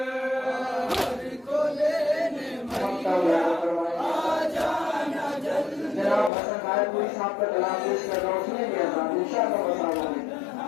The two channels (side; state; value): right; drops out; at 6.3 s